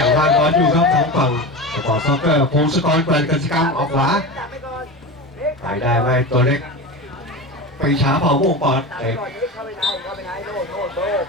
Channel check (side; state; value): both; normal; correlation 0.26